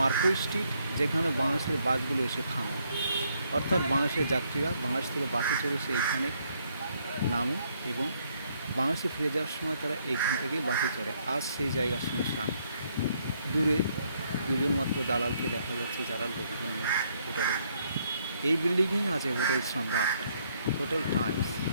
স্ট্রিট, যেখানে বাংলাদেশের বাসগুলো এসে থামে। অর্থাৎ বাংলাদেশের যাত্রীরা বাংলাদেশ থেকে বাসে চড়ে এসে এইখানে নামে এবং বাংলাদেশে ফিরে যাওয়ার সময় তারা এইখান থেকেই বাসে চড়ে। আজ সেই জায়গা শুনশান। দূরে দুজন মাত্র দালালকে দেখা যাচ্ছে যারা লোকজন নিয়ে হোটেলে যায়। এই বিল্ডিংয়েই আছে hotel Samrat, hotel Times,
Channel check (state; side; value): inverted; both; correlation -0.71